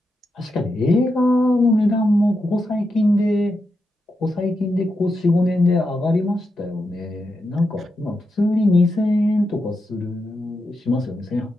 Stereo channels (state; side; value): normal; both; correlation 0.86